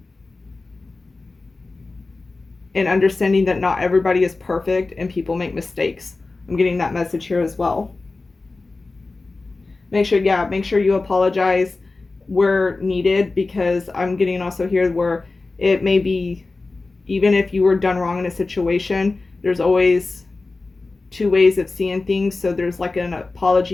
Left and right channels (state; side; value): quieter; right; 3.5 dB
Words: and understanding that not everybody is perfect and people make mistakes. I'm getting that message here as well. Make sure you apologize where needed, because I'm getting also here where it may be, even if you were done wrong in a situation, there's always two ways of seeing things. So there's like an